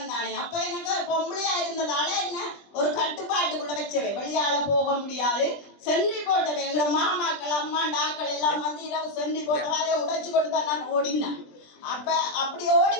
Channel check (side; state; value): right; late; 20 ms